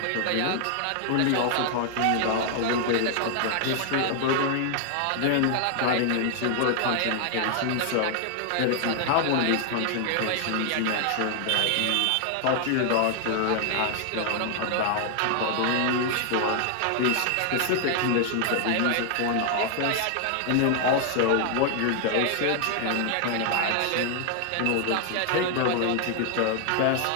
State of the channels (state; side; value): different; both; correlation 0.00